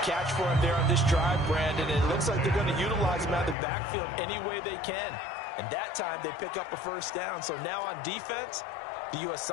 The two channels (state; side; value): drops out; right; at 3.6 s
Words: catch for him there on this drive, Brandon. And it looks like they're going to utilize him out of the backfield any way they can. And that time they pick up a first down. So now on defense, do you